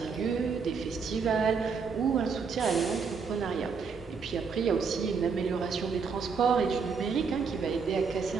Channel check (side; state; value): left; quieter; 5.5 dB